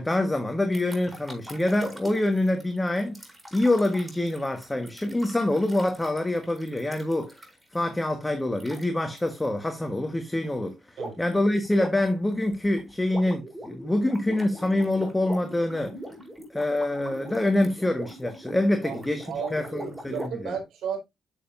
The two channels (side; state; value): both; normal; correlation 0.95